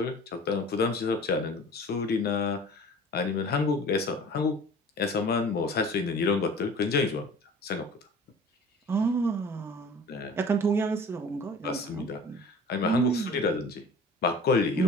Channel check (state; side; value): normal; both; correlation 0.44